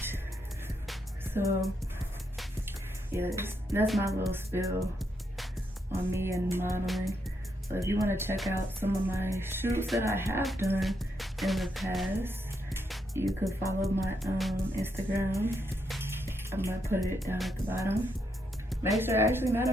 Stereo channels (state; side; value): normal; both; correlation 0.79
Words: So yeah, that's my little spill on me and modeling. So if you want to check out some of my shoots that I have done in the past, you could follow my Instagram. I'm gonna put it down at the bottom. Make sure, actually, matter